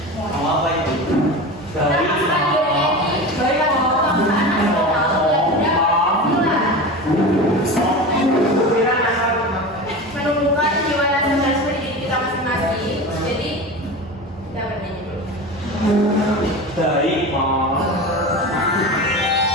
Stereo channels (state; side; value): normal; both; correlation 0.29